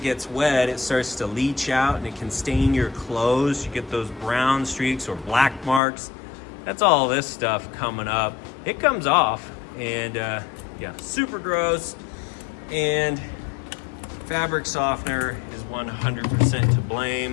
gets wet, it starts to leach out and it can stain your clothes. You get those brown streaks or black marks. That's all this stuff coming up. It comes off and yeah, super gross. And fabric softener is 100% to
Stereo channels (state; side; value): drops out; right; at 5.8 s